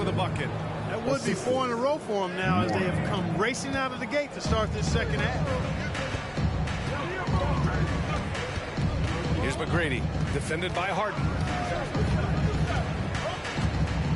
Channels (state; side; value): identical; both; correlation 1.00